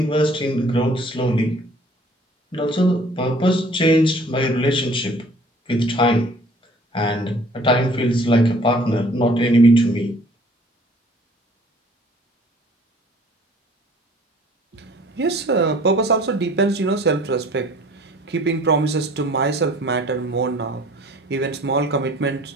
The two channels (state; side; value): normal; both; correlation 0.53